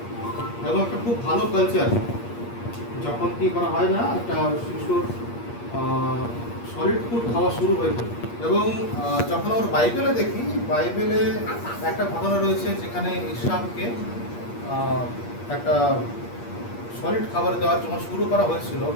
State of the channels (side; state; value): right; late; 8.5 ms